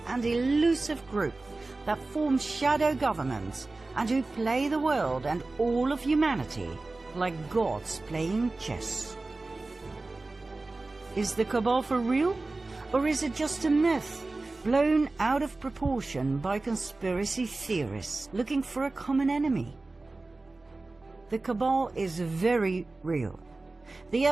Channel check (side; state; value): left; quieter; 3.3 dB